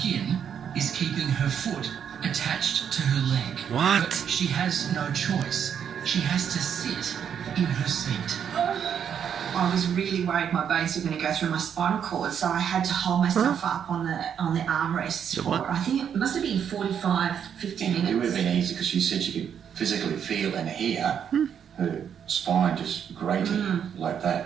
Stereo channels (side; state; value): left; quieter; 8.2 dB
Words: is keeping her foot attached to her leg. What? But she has no choice. she has to sit in her seat. I was really worried my bones were going to go through my spinal cord, so I had to hold myself up on the armrest for, I think it must have been 45, 50 minutes. It would have been easy because she said she could physically feel and hear her spine just grating like that